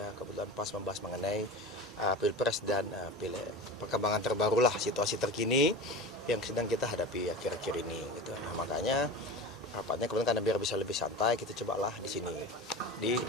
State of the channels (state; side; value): normal; both; correlation 0.31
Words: kebetulan pas membahas mengenai Pilpres dan Pileg. Perkembangan terbaru lah, situasi terkini yang sedang kita hadapi akhir-akhir ini gitu. Nah makanya rapatnya kemudian karena biar bisa lebih santai, kita cobalah di sini di